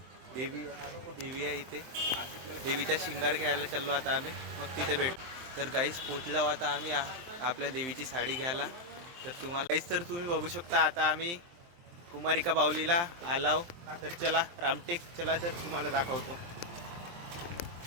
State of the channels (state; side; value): late; left; 23 ms